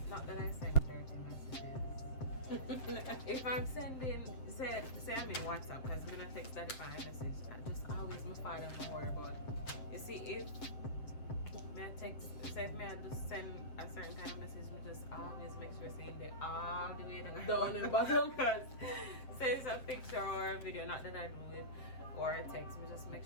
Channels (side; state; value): right; late; 7.7 ms